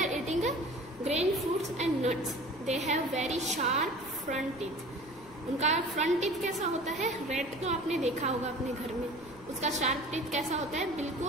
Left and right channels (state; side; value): noise; left; rumble, 22 dB below the sound